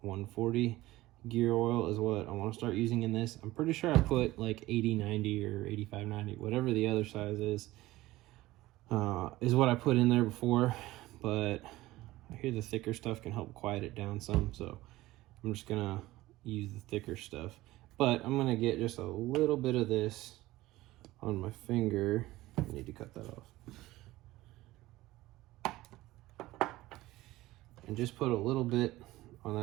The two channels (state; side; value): quieter; left; 17.6 dB